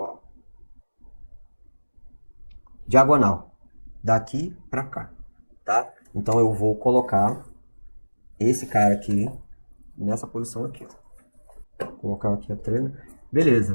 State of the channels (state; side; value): inverted; both; correlation -1.00